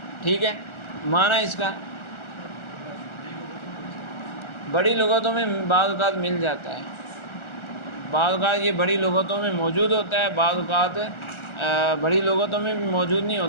ٹھیک ہے، معنی اس کا بڑی لغتوں میں بعض اوقات مل جاتا ہے، بعض اوقات یہ بڑی لغتوں میں موجود ہوتا ہے، بعض اوقات بڑی لغتوں میں بھی موجود نہیں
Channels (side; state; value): right; late; 1.4 ms